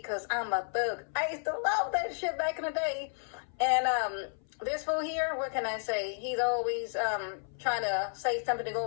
because I'm a thug. I used to love that shit back in the day. And this fool here, what can I say? He's always trying to say something to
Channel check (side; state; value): right; silent; 56 dB below the other